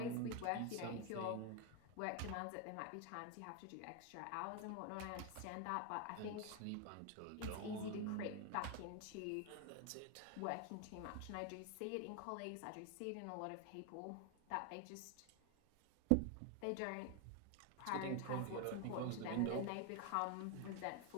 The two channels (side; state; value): both; different; correlation 0.01